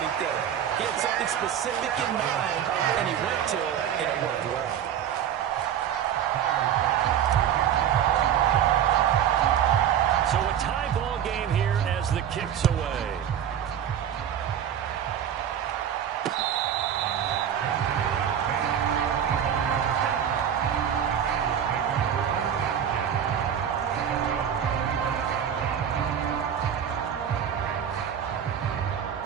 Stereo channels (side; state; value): left; quieter; 9.3 dB